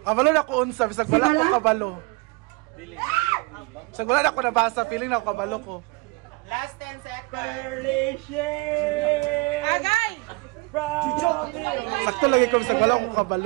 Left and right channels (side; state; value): left; quieter; 26.1 dB